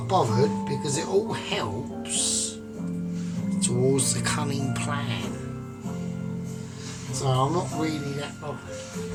bothered because it all helps towards the cunning plan. So I'm not really that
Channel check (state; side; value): identical; both; correlation 1.00